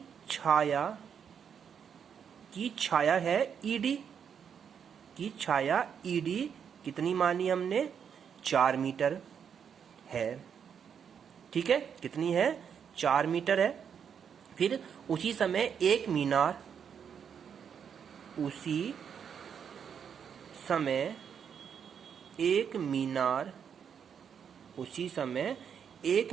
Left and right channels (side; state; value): left; quieter; 7.5 dB